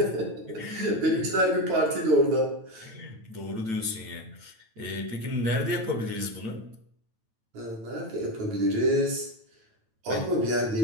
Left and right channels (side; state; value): left; late; 9.0 ms